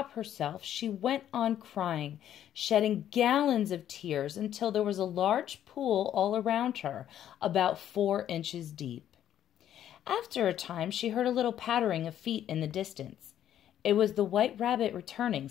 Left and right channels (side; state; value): right; quieter; 10.9 dB